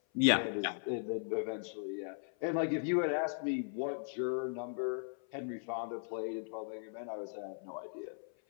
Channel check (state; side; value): silent; right; 53 dB below the other